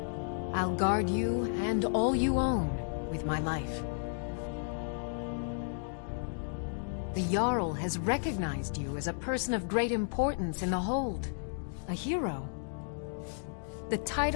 I'll guard you and all you own with my life. The Jarl has recognized you as a person of great importance in the Hold. A hero. The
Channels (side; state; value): right; silent; digital silence